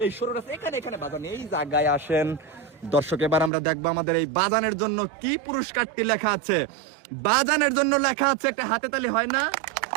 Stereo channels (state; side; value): drops out; left; at 3.5 s